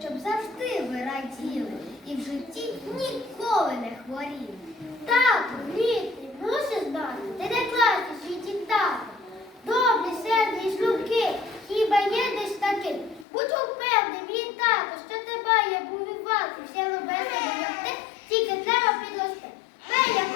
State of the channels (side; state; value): right; drops out; at 13.2 s